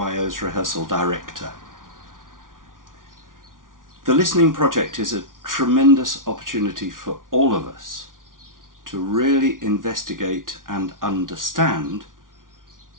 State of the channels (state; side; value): late; left; 0.89 ms